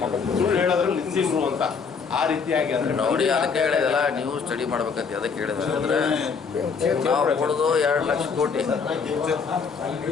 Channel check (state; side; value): quieter; right; 5.6 dB